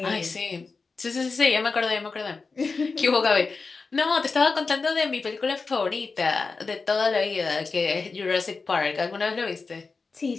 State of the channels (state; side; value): quieter; right; 4.3 dB